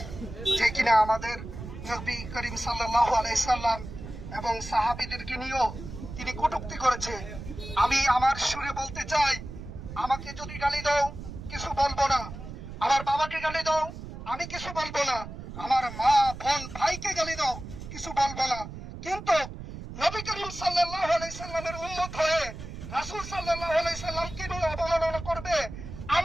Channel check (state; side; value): noise; right; rumble, 11 dB below the sound